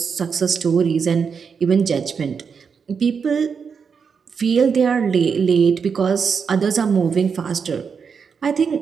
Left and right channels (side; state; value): left; quieter; 6.1 dB